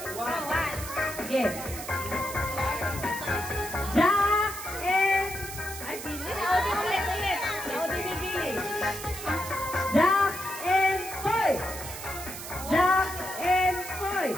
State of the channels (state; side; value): noise; right; hiss, 10 dB below the sound